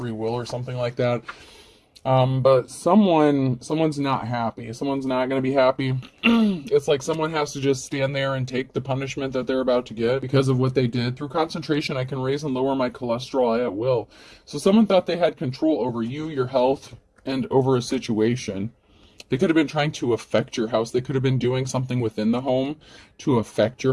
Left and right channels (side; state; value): both; identical; correlation 1.00